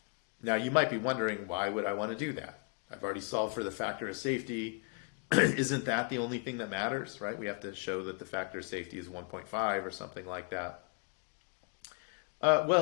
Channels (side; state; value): right; quieter; 34.4 dB